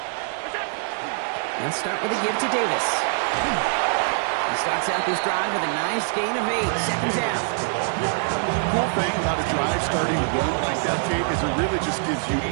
Let's start with a give to Davis. He starts out this drive with a nice gain of 8. 2nd down. Cool thing about a drive starting a run like that, Kate, is it really just gives you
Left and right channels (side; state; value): left; silent; digital silence